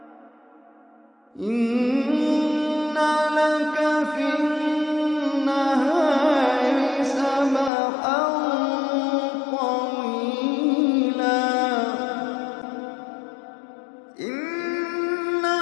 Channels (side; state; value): right; drops out; at 7.7 s